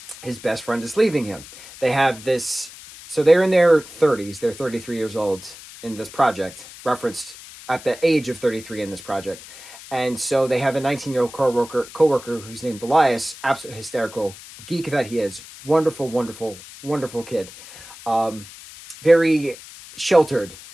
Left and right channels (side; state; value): left; noise; hiss, 17 dB below the sound